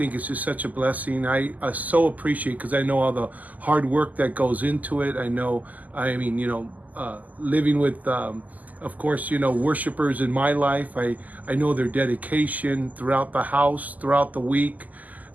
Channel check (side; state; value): left; late; 0.079 ms